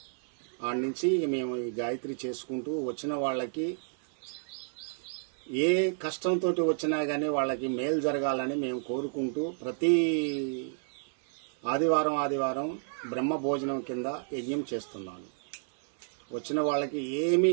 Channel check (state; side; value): silent; left; 57 dB below the other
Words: ఆడ నుంచి మేము ఈ గాయత్రి చేసుకుంటూ వచ్చిన వాళ్ళకి ఏ కష్టంతో వచ్చినా గానీ వాళ్ళకి మేలు జరగాలని మేము కోరుకుంటూ ప్రతి ఆదివారం బ్రహ్మ భోజనం కింద యజ్ఞం చేస్తున్నాను. వచ్చిన వాళ్ళకి